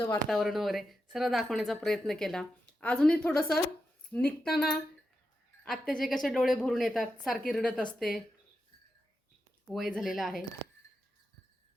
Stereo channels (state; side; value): normal; both; correlation 0.88